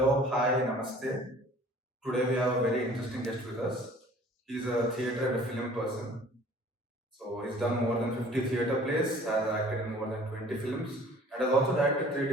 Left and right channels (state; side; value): normal; both; correlation 0.51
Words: hi, namaste. Today we have a very interesting guest with us. He's a theatre and a film person. So he's done more than 50 theatre plays, has acted in more than 20 films, and has also directed three